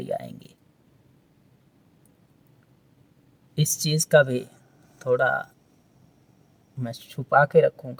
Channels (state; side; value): identical; both; correlation 1.00